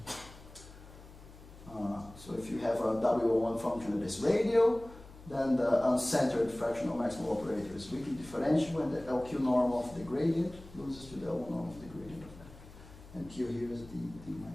So if you have a W01 function that is radial, then the uncentered fractional maximal operator is weakly differentiable, and the LQ norm of the gradient loses to the L norm of the gradient of that. And Q here is d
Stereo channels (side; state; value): left; noise; hum, 19 dB below the sound